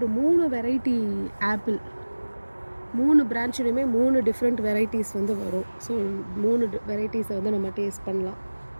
3 வெரைட்டி ஆப்பிள், 3 பிரான்ச்லையுமே 3 டிஃப்ரெண்ட் வெரைட்டிஸ் வந்து வரும். ஸோ 3 வெரைட்டிஸை வந்து நம்ம டேஸ்ட் பண்ணலாம்.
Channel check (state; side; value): inverted; both; correlation -1.00